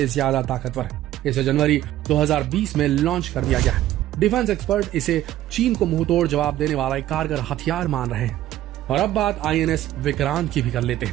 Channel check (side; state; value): left; quieter; 13.7 dB